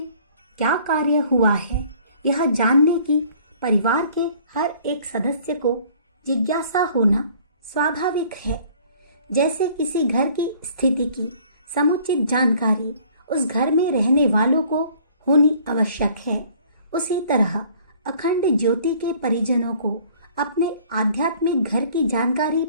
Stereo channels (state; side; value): inverted; both; correlation -0.54